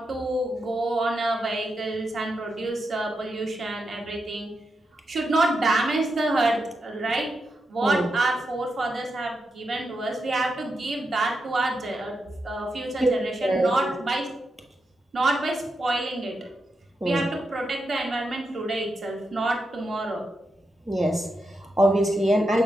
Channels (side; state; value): both; normal; correlation 0.86